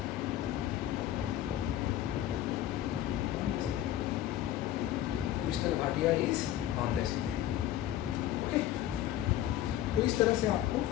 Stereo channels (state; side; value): quieter; right; 12.7 dB